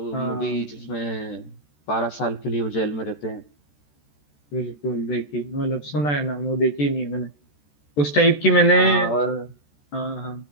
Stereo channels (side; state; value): right; late; 14 ms